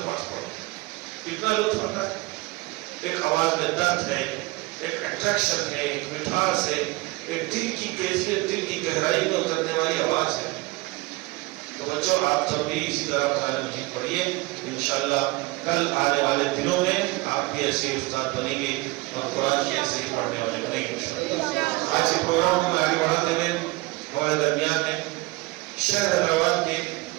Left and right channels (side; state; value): left; quieter; 22.4 dB